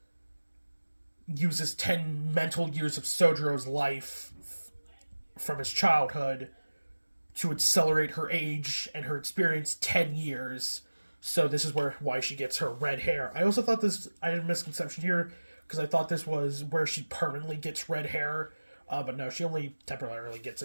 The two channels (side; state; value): both; inverted; correlation -1.00